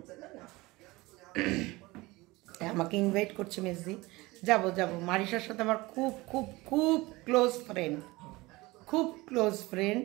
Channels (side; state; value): left; quieter; 21.5 dB